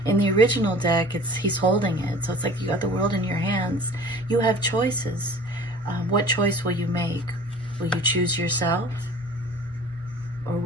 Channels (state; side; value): normal; both; correlation 0.45